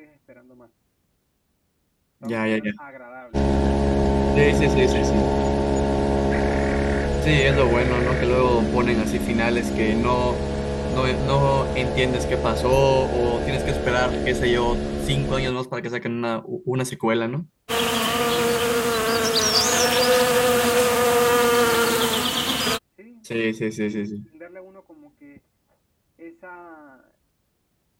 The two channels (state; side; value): identical; both; correlation 1.00